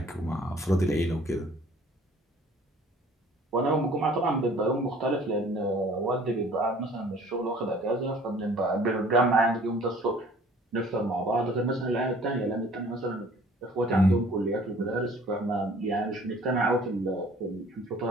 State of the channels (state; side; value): normal; both; correlation 0.53